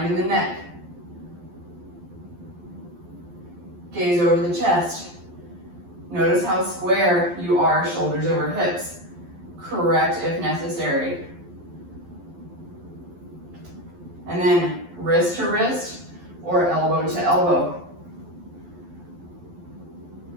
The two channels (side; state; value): left; late; 11 ms